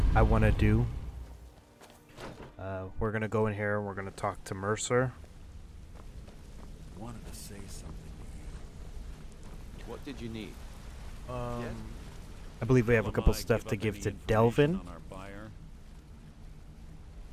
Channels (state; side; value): identical; both; correlation 1.00